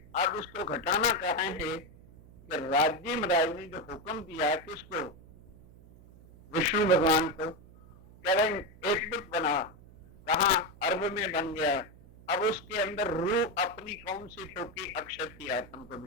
अब इसको घटाना कहा है कि राज्य राज ने जो हुक्म दिया किसको, विष्णु भगवान को, कह रहे हैं एक बुत बना, कहा अर्ब में बन गया, अब उसके अंदर रूह अपनी कौन सी ठोकी, अक्षर की आत्म को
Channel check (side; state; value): right; noise; hum, 22 dB below the sound